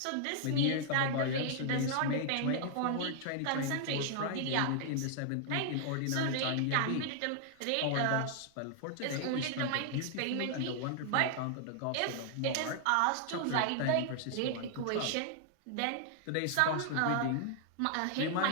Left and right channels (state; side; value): different; both; correlation 0.00